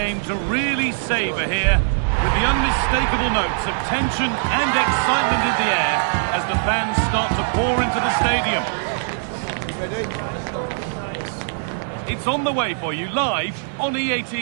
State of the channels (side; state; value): left; silent; digital silence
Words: to really savour here, with the unmistakable notes of tension and excitement in the air as the fans start to pour into the stadium. It's on the way for you live on EA